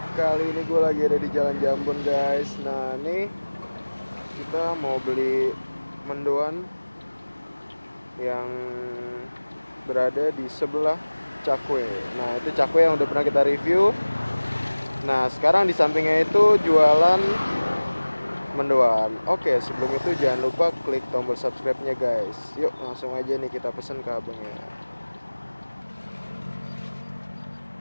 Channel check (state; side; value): inverted; both; correlation -1.00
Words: Kali ini gue lagi ada di Jalan Jambon guys. Nah nih kita mau beli mendoan yang berada di sebelah Cakwe. Nah itu Cakwe yang udah pernah kita review. Nah sekarang di sampingnya itu jualan mendoan. Oke, sebelum itu jangan lupa klik tombol subscribe-nya guys. Yuk langsung aja nih kita pesen ke abangnya.